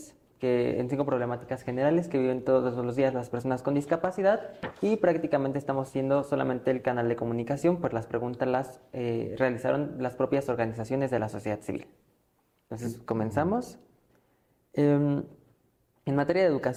en 5 problemáticas generales que viven todos los días las personas con discapacidad, y prácticamente estamos siendo solamente el canal de comunicación, pues las preguntas las realizaron las propias organizaciones de la sociedad civil. Entonces, comenzamos. En materia de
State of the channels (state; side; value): identical; both; correlation 1.00